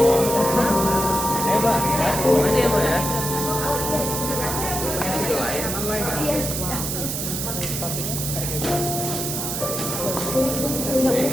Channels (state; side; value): noise; right; hiss, 3 dB below the sound